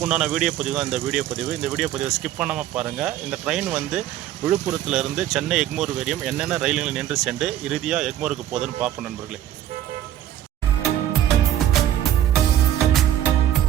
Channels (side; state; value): left; quieter; 11.8 dB